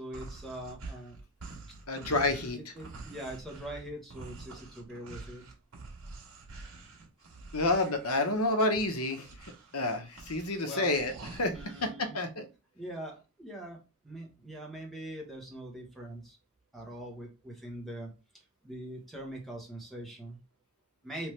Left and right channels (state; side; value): normal; both; correlation -0.07